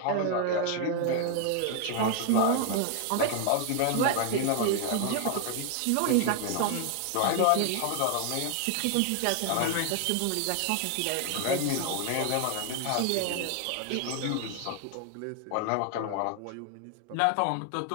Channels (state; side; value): different; both; correlation 0.00